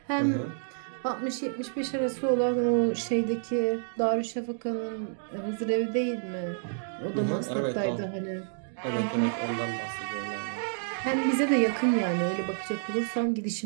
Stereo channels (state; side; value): silent; left; digital silence